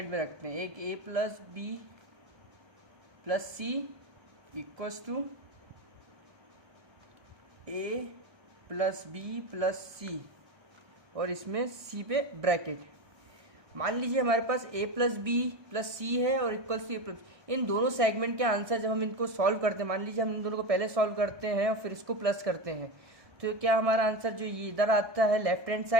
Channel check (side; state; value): left; late; 1.6 ms